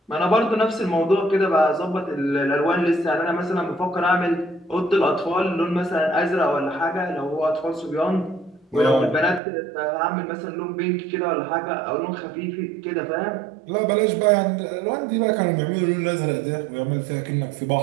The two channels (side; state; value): left; drops out; at 9.4 s